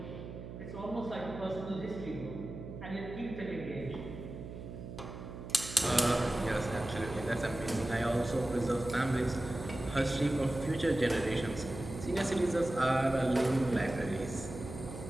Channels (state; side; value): noise; right; hum, 10 dB below the sound